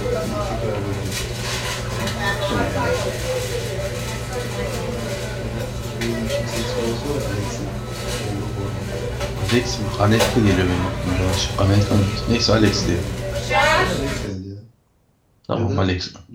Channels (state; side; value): identical; both; correlation 1.00